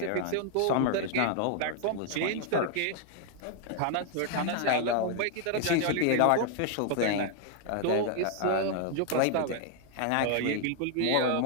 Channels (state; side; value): different; both; correlation 0.00